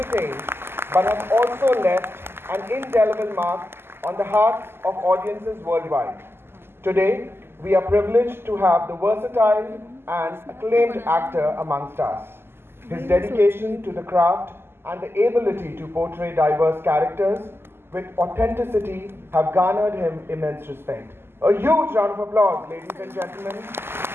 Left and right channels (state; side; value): late; left; 0.12 ms